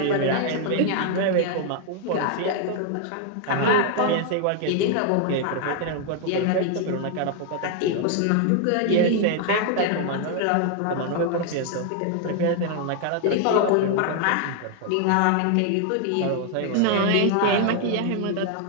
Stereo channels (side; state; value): both; different; correlation 0.00